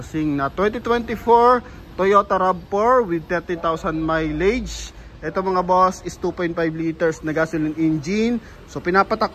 na 2024 Toyota RAV4 with 30,000 mileage. Eto mga boss is 2.5 liters na gasoline engine. So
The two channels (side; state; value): both; identical; correlation 1.00